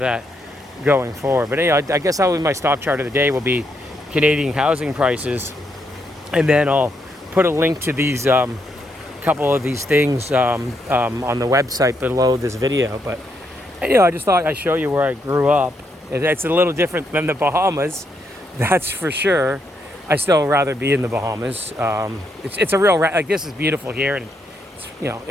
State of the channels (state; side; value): normal; both; correlation 0.78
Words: going forward. But anyway, I guess my stock chart of the day will be Canadian housing prices. And then I'll put a link to these couple of these things on the website below this video. But I just thought I'd show you where I grew up. It's a little different than the Bahamas, that's for sure. I still rather be in the Bahamas. It's a real like, this is beautiful here, and